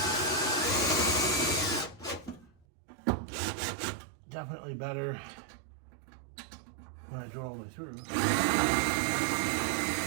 Definitely better when I drill all the way through.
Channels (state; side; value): drops out; left; at 2.7 s